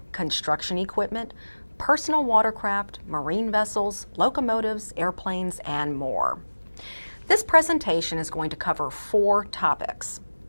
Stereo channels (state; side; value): inverted; both; correlation -1.00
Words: construction equipment, personal watercraft, marine vessels, locomotives, airplanes, and more. This presentation is going to cover 4 topics.